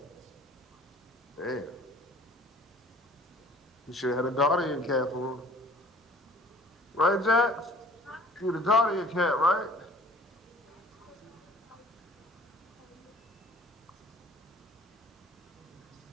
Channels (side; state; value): both; normal; correlation 0.51